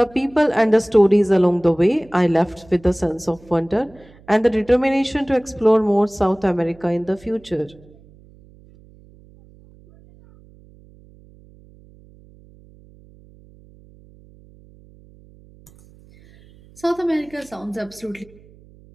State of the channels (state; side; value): noise; right; hum, 26 dB below the sound